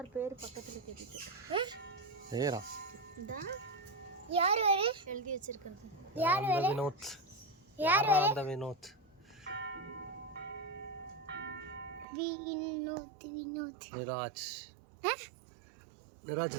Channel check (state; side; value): drops out; left; at 12.1 s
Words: பேர் பக்கத்துல தெரியுது. ஏறா. இதா யார் வேற எழுதி வச்சிருக்கிறது? யார் வேற? வினோத். யார் வேற? அந்த வினோத். வினோத். நிராஜ். நிராஜ்